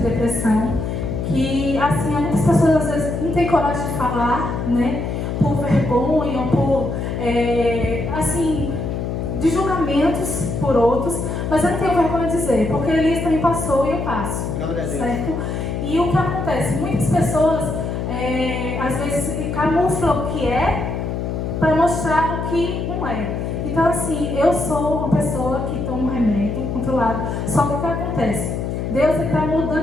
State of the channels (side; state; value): left; noise; hum, 3 dB below the sound